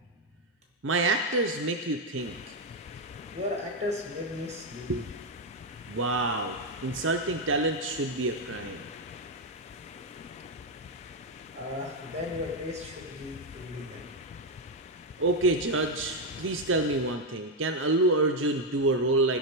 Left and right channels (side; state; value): both; normal; correlation 0.04